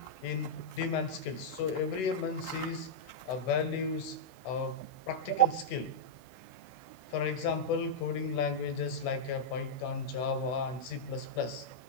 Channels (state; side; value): late; right; 16 ms